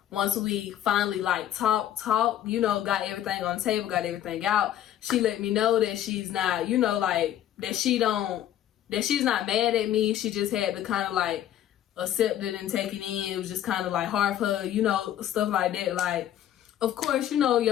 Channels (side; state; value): right; quieter; 11.5 dB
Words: once we finally like talked, you know, got everything on the table, got everything out, she let me know that she's not, you know, like, that she's not mad at me. She just had to kind of like accept it and take it in. It was just kind of like hard for her, you know, stuff like that. Like, of course, you know,